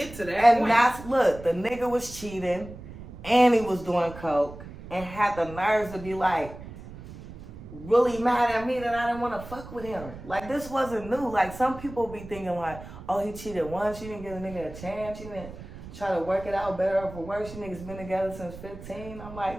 to that and point? that's, look, the nigga was cheating and he was doing coke and had the nerves to be like, really mad at me that I didn't want to fuck with him. Like, this wasn't new. Like, some people be thinking like, oh, he cheated once, you didn't give a nigga a chance, you didn't try to work it out better or for worse, you niggas been together since 15. I'm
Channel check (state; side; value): noise; right; rumble, 14 dB below the sound